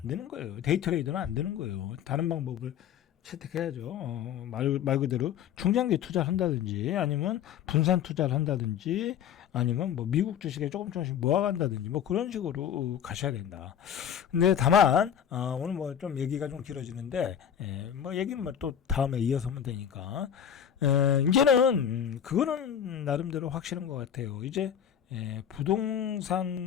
되는 거예요. 데이 트레이드는 안 되는 거예요. 다른 방법을 채택해야죠. 말 그대로 중장기 투자를 한다든지 아니면 분산 투자를 한다든지 아니면 뭐 미국 주식에 조금씩 모아간다든지 뭐 그런 식으로 가셔야 된다. 근데 다만 오늘 뭐 좀 얘기가 좀 길어지는데 뭐 얘기는 뭐 또 다음에 이어서 하면 되니까 이제는 그거는 나름대로 확실한 것 같아요. 이제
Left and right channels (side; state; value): right; quieter; 9.0 dB